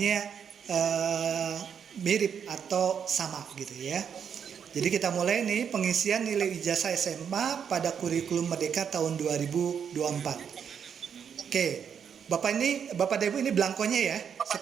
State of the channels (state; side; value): quieter; left; 7.6 dB